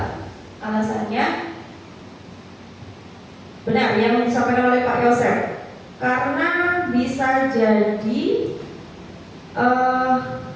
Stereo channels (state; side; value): identical; both; correlation 1.00